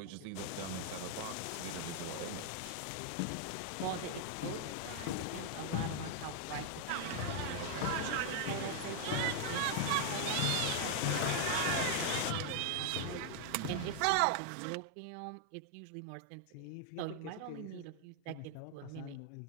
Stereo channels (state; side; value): different; both; correlation 0.00